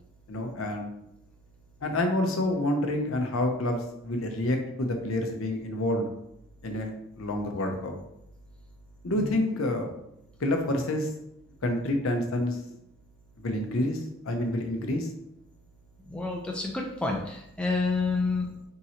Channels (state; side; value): noise; right; hum, 29 dB below the sound